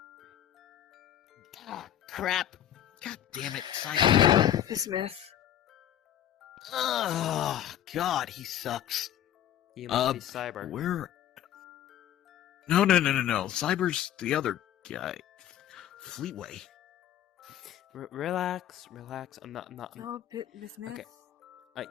Ah, crap. God damn it, Cyber. Smith. Oh, God, he sucks. You must be Cyber. Where? No. Cyber's the other guy. Fleetway. Relax. I'm not... No, Miss Smith. Okay.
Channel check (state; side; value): quieter; right; 11.1 dB